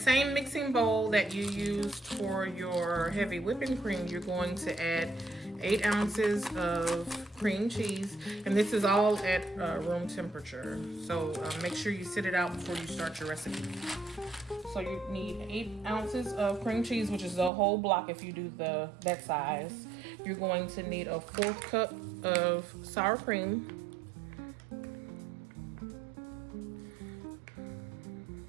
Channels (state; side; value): drops out; left; at 17.5 s